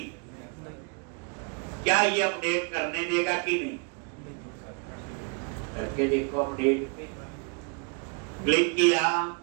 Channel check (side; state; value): left; quieter; 35.0 dB